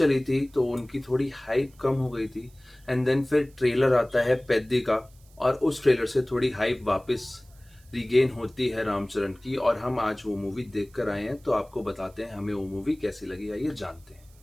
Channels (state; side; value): noise; right; hiss, 29 dB below the sound